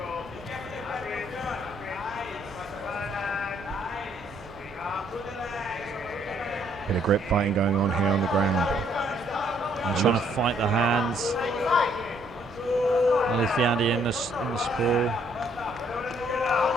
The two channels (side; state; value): both; normal; correlation 0.67